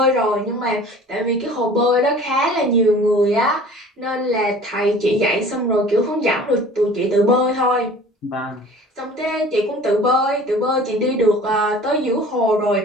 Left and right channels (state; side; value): normal; both; correlation 0.45